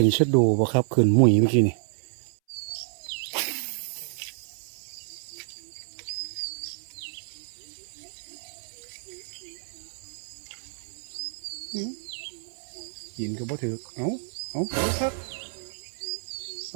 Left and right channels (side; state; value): left; silent; 59 dB below the other